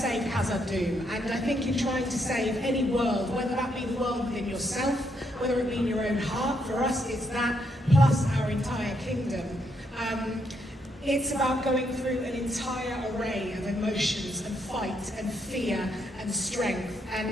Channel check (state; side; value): normal; both; correlation 0.76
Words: Hazeldine, and I think in trying to save any world, whether that be the world within yourself, whether it be in your own heart, for us it's that, plus our entire kingdom. It's about going through an entire array of emotions and fight and fear and strength